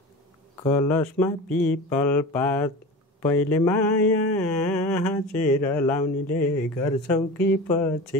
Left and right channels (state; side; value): normal; both; correlation 0.32